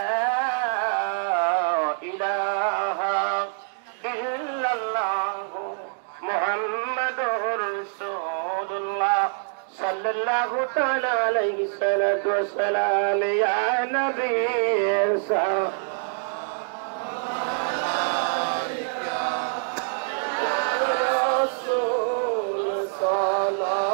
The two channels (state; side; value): silent; left; 62 dB below the other